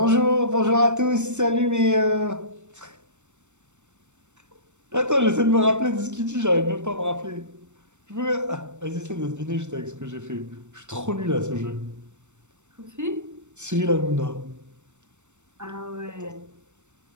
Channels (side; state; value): left; late; 0.84 ms